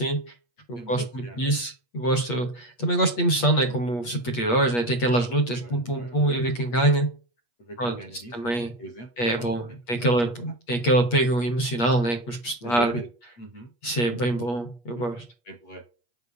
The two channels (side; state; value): right; late; 8.4 ms